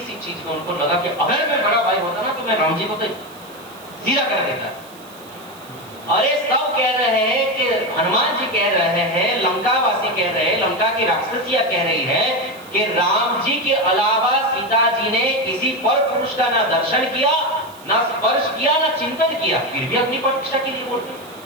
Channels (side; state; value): right; noise; hiss, 22 dB below the sound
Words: चीज में उनको लगा कि अगर मैं बड़ा भाई होता ना तो मैं राम जी को तो जीरा कर देता। अरे सब कह रहे हैं कि हनुमान जी कह रहे हैं, लंकावासी कह रहे हैं, लंका की राक्षसियां कह रही है कि राम जी के अलावा सीता जी ने किसी पर पुरुष का ना दर्शन किया, ना स्पर्श किया, ना चिंतन किया, फिर भी अपनी प्रतिष्ठा के लिए बोलते।